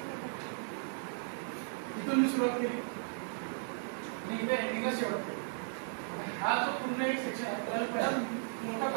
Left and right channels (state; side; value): silent; left; digital silence